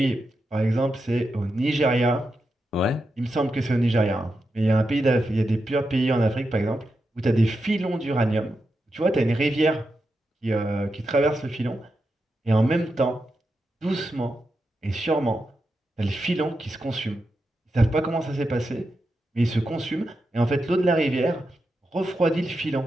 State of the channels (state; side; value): normal; both; correlation 0.87